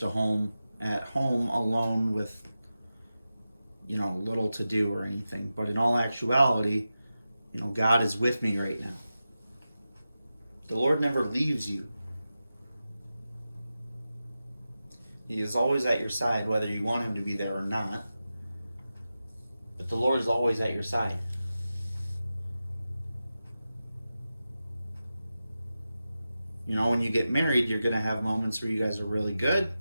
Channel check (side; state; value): both; inverted; correlation -0.93